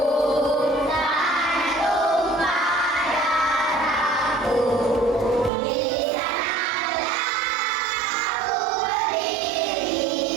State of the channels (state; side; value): drops out; left; at 5.5 s